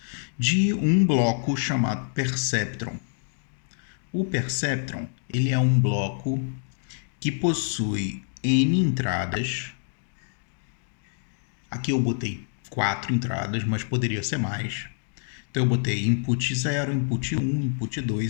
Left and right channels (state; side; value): silent; right; digital silence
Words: de um bloco chamado Perceptron. O Perceptron, ele é um bloco que possui N entradas. Aqui eu botei 4 entradas, mas poderia ser mais. Então eu botei input 0, input 1, input